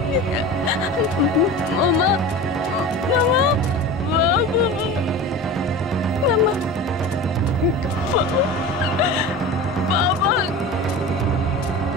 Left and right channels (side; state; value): both; normal; correlation 0.33